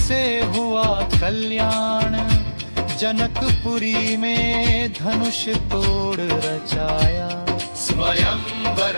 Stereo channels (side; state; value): both; inverted; correlation -1.00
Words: हुआ कल्याण। जनकपुरी में धनुष तोड़ रचाया स्वयंवर